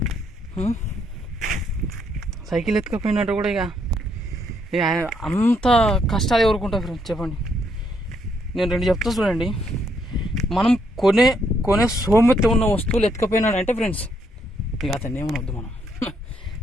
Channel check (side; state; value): both; normal; correlation 0.74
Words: సైకిల్ ఎత్తుకపోయినట్టు కూడా ఇక అంత కష్టాలు ఎవరుకుంటారు ఫ్రెండ్స్ చెప్పండి. నేను రెండు చెప్తా చూడండి. మనం కొనే సోమెత్త ఉన్న వస్తువులు ఎత్తుకపోయినాడంటే ఫ్రెండ్స్ ఇక అతన్ని ఏమనొద్దు మనం.